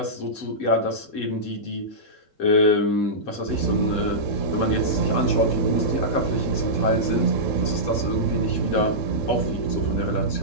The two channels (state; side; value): late; right; 3.7 ms